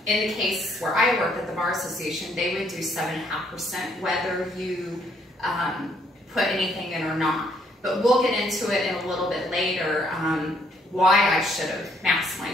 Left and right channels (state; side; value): normal; both; correlation 0.68